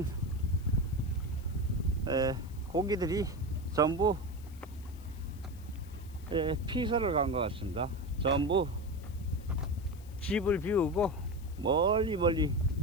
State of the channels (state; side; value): noise; left; hiss, 24 dB below the sound